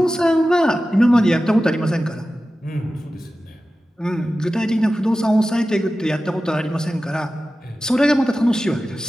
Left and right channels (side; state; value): both; normal; correlation 0.94